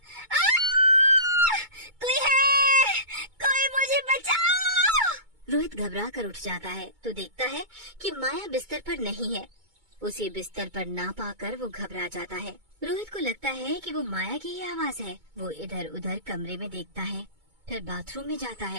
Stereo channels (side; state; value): left; late; 2.2 ms